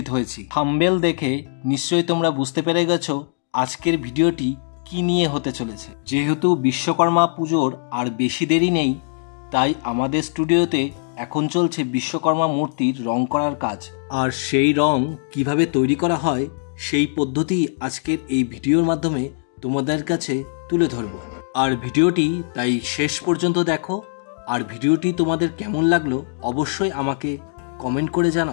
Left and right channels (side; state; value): right; silent; digital silence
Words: হয়েছি। থাম্বনেল দেখে নিশ্চয়ই তোমরা বুঝতে পেরে গেছো আজকের ভিডিওটি কি নিয়ে হতে চলেছে। যেহেতু বিশ্বকর্মা পুজোর আর বেশি দেরি নেই, তাই আমাদের স্টুডিওতে এখন চলছে বিশ্বকর্মা মূর্তির রং করার কাজ। আর সেই রং কিভাবে তৈরি করা হয় সেই পদ্ধতি আজকের এই ভিডিওর মাধ্যমে তোমাদের কাছে তুলে ধরবো। আর ভিডিওটি তাই শেষ পর্যন্ত দেখো। আর ভিডিওটি তোমাদের কেমন লাগলো অবশ্যই আমাকে কমেন্ট করে